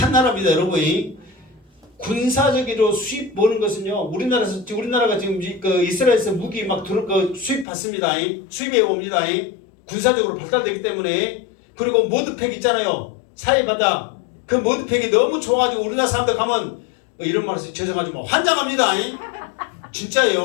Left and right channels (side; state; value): right; drops out; at 7.7 s